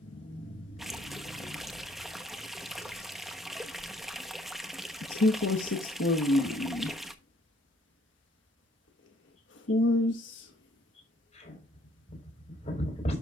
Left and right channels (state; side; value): normal; both; correlation 0.64